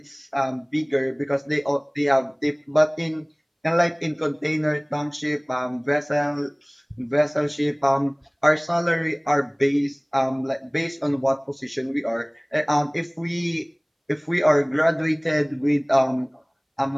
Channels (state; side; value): identical; both; correlation 1.00